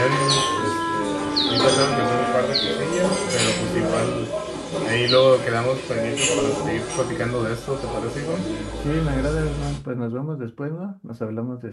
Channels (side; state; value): both; identical; correlation 1.00